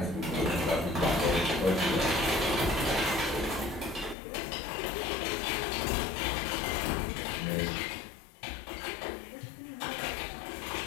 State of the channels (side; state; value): right; drops out; at 4.2 s